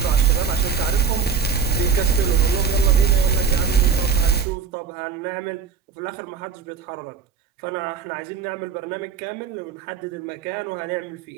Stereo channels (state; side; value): quieter; left; 6.2 dB